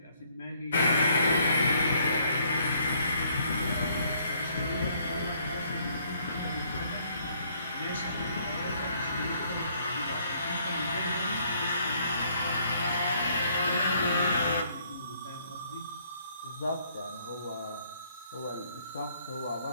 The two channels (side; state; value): both; inverted; correlation -0.66